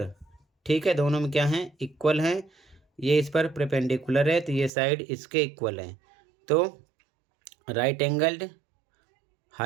ठीक है, दोनों में क्या है, इक्वल हैं। ये इस पर परपेंडिकुलर है तो ये साइड इसके इक्वल है, तो right angled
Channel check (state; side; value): drops out; left; at 4.7 s